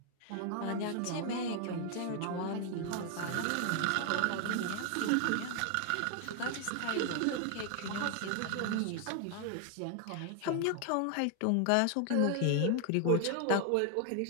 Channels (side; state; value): both; different; correlation 0.00